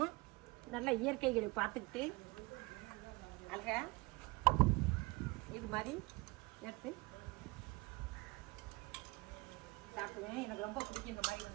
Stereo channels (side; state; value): left; quieter; 24.6 dB